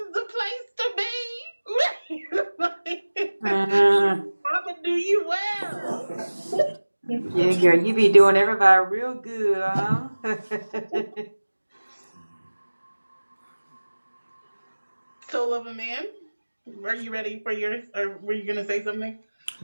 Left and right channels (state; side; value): inverted; both; correlation -1.00